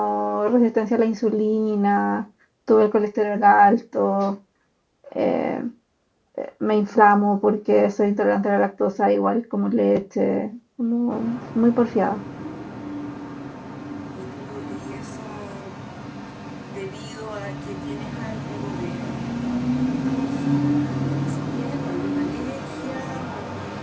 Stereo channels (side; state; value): both; identical; correlation 1.00